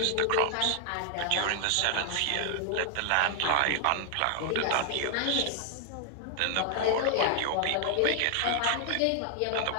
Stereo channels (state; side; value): different; both; correlation 0.00